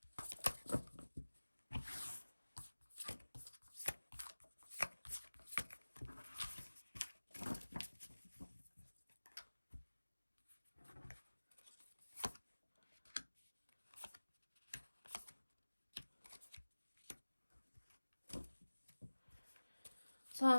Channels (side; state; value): both; inverted; correlation -1.00